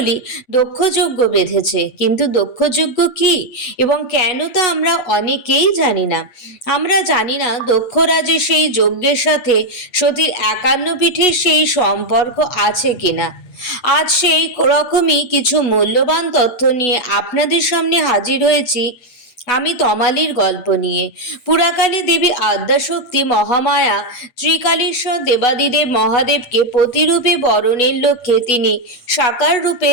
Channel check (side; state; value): right; late; 8.1 ms